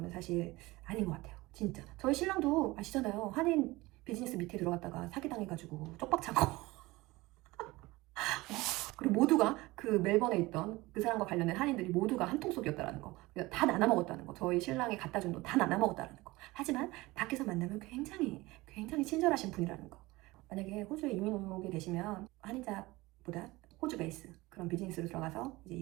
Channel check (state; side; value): quieter; left; 20.7 dB